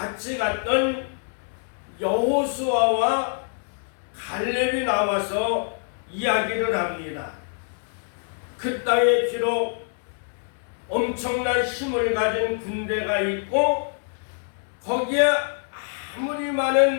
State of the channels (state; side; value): silent; right; 61 dB below the other